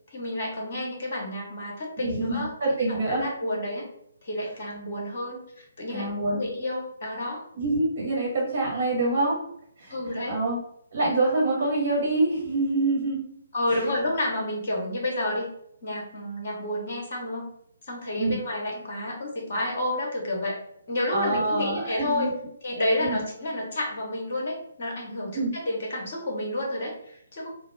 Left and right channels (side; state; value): both; inverted; correlation -0.66